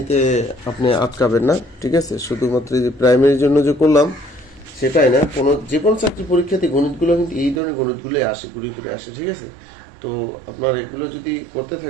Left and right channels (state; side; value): drops out; left; at 7.6 s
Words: আপনি আটকাবেন না। ঠিক আছে, শুধুমাত্র যে প্রাইমারির জন্য যে করলাম সেটাই না, যে কোনো চাকরি পরীক্ষাতে গণিতগুলো কিন্তু এই ধরনের গণিতগুলোই আসে, ঘুরে ফিরে আসে। ঠিক আছে, তো আপনারা এগুলো যদি করতে